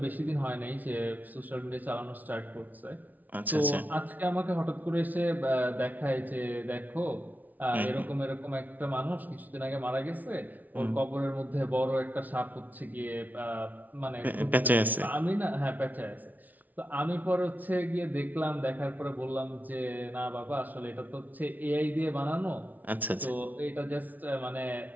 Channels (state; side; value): late; left; 0.078 ms